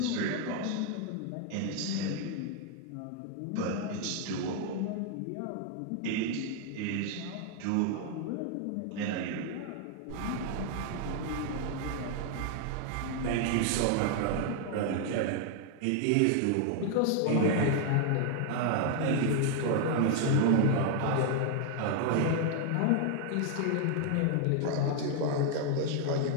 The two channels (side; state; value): both; different; correlation 0.00